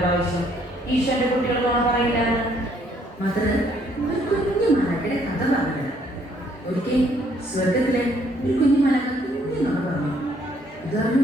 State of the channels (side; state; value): both; normal; correlation 0.66